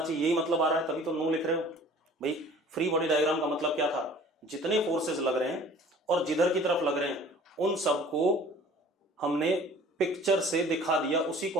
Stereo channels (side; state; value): both; normal; correlation 0.48